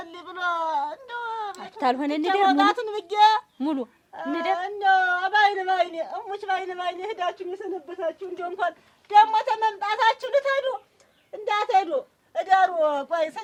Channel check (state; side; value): identical; both; correlation 1.00